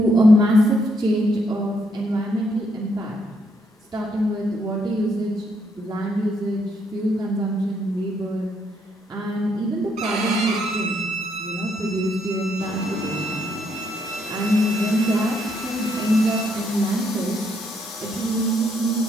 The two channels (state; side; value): normal; both; correlation 0.74